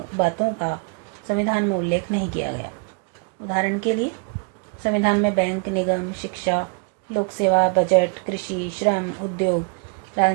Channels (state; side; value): quieter; left; 34.9 dB